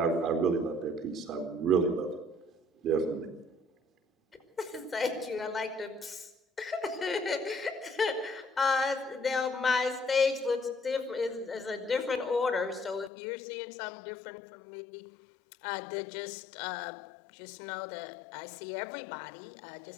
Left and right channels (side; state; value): right; drops out; at 13.1 s